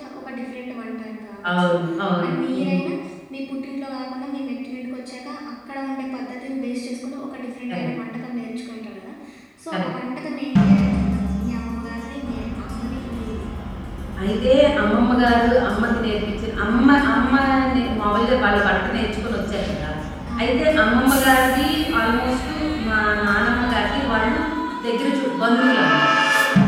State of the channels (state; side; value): identical; both; correlation 1.00